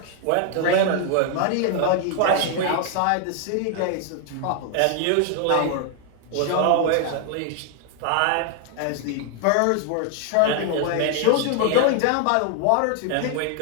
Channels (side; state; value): both; different; correlation 0.00